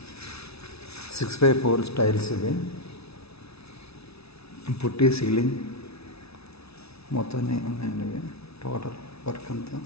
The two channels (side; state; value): right; late; 0.79 ms